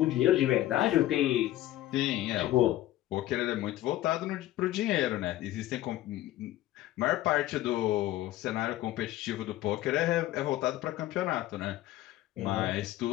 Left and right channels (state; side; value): quieter; right; 14.8 dB